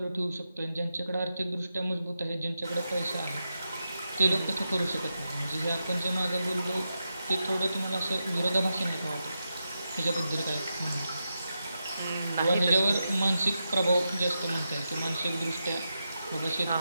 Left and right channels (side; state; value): both; inverted; correlation -0.88